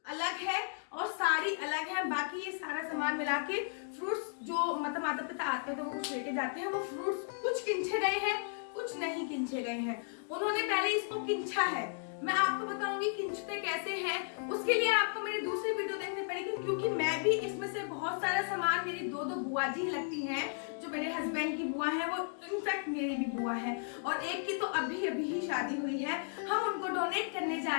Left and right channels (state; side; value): silent; right; digital silence